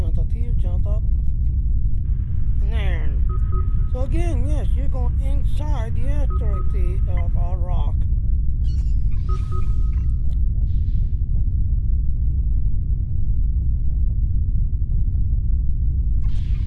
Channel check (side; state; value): both; identical; correlation 1.00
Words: out here, jump up, and there. So again, yes, you're going inside the asteroid rock.